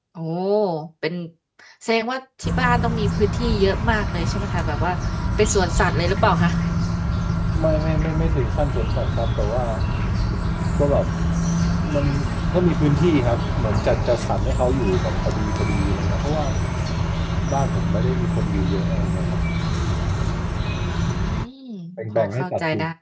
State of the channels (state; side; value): identical; both; correlation 1.00